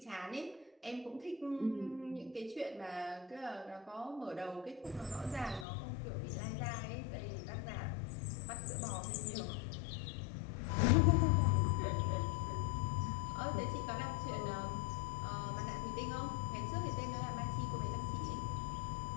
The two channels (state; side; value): drops out; right; at 5.7 s